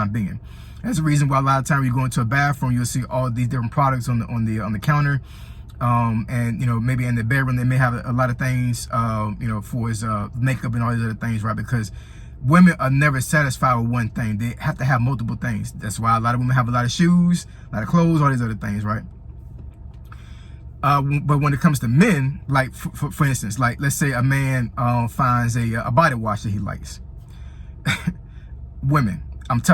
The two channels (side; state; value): both; identical; correlation 1.00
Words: being. That's the reason why a lot of times you go into a bathroom, you'll see all these different products on the counter. And, you know, maybe in the bedroom, they may have a lot of things, you know, for his makeup and all these other things, right? Because women are never satisfied with one thing. They have to have multiple things. That's why a lot of women have a lot of shoes, a lot of clothes, all these other things, right? But when it comes to men, like, for instance, like, let's say a man finds a body wash that he likes. Women, I'm